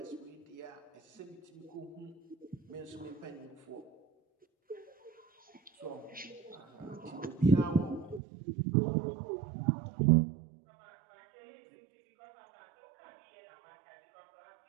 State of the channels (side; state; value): left; drops out; at 8.2 s